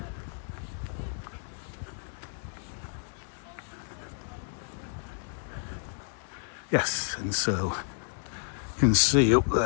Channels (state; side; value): silent; right; digital silence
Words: Yes, and so you can see up